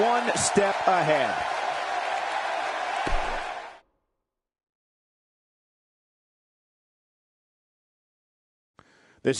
one step ahead.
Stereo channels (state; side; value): identical; both; correlation 1.00